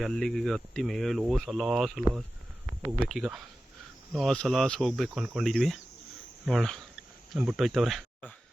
ಅಲ್ಲಿಗೆ ಹತ್ತಿ ಮೇಲೋ ಸಲಾಸ್ ಹೋಗ್ಬೇಕೀಗ. ಸಲಾಸ್ ಹೋಗ್ಬೇಕು ಅಂದ್ಕೊಂಡಿದ್ವಿ. ನೋಡೋಣ ನಮ್ಮ ಬಿಟ್ಟೋಯ್ತವ್ರೆ.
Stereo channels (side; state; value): both; normal; correlation 0.94